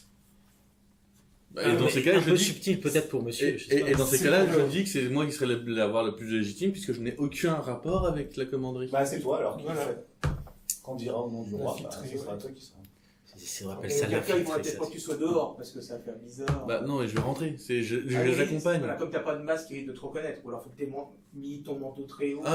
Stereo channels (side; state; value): both; identical; correlation 1.00